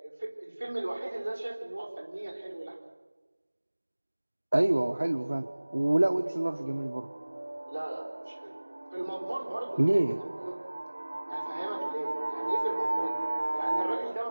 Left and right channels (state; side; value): inverted; both; correlation -1.00